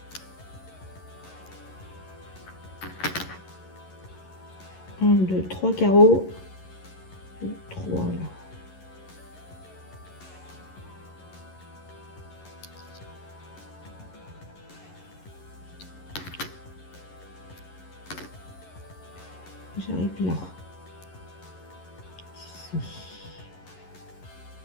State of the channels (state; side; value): late; right; 11 ms